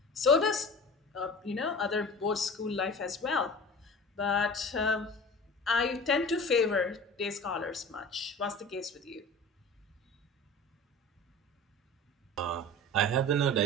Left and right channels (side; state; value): both; normal; correlation 0.38